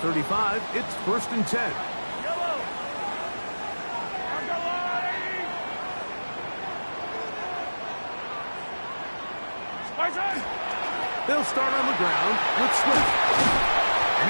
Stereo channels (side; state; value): both; inverted; correlation -1.00